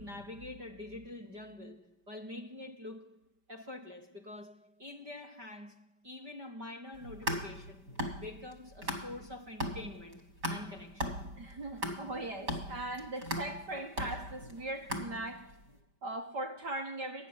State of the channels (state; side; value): late; left; 5.1 ms